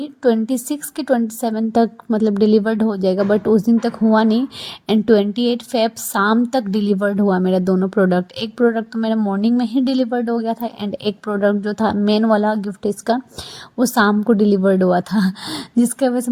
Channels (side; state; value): both; identical; correlation 1.00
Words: के 27 तक मतलब डिलीवर्ड हो जाएगा, बट उस दिन तक हुआ नहीं। एंड 28 फेब शाम तक डिलीवर्ड हुआ मेरा दोनों प्रोडक्ट। एक प्रोडक्ट तो मेरा मॉर्निंग में ही डिलीवर्ड हो गया था एंड एक प्रोडक्ट जो था मेन वाला गिफ्ट इसका, वो शाम को डिलीवर्ड हुआ था जिसकी वजह से